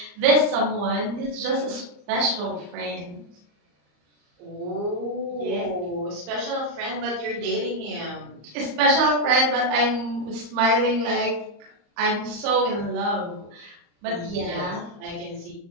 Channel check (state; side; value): late; left; 34 ms